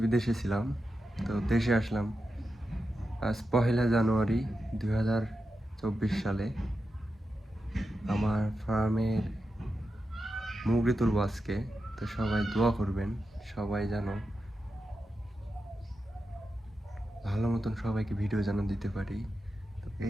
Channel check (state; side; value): normal; both; correlation 0.89